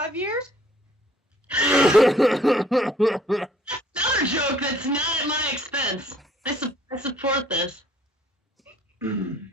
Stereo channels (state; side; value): normal; both; correlation 0.59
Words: years? Another joke that's not at my expense. I support this.